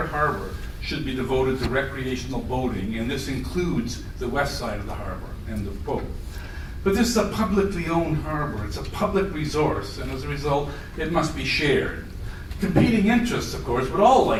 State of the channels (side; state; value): both; identical; correlation 1.00